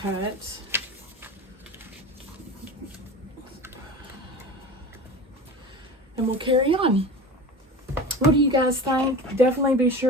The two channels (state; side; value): normal; both; correlation 0.33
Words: cut. And we'll carry on. What do you guys think? Definitely be